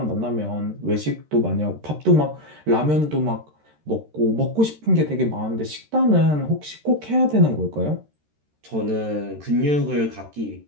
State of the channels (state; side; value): late; left; 13 ms